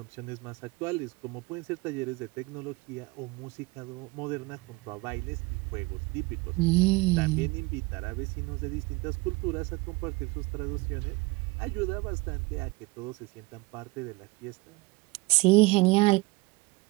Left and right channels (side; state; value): left; quieter; 23.2 dB